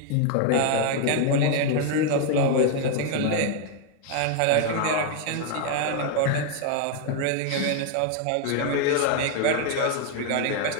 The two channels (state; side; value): different; both; correlation 0.00